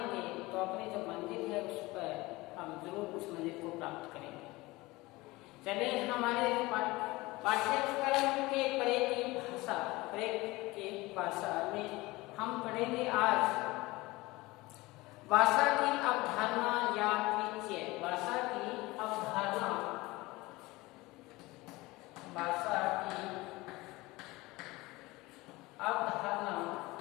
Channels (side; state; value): right; quieter; 21.1 dB